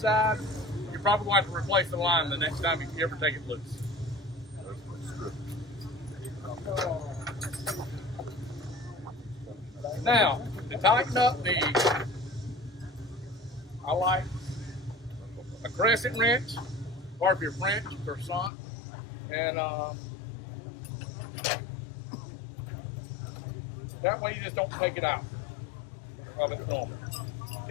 you're probably going to have to replace the line the next time you ever take it loose. Now, to tighten up I like a crescent wrench, or if you're French, croissant, and that way you just don't take it out of its normal.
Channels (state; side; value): drops out; right; at 18.5 s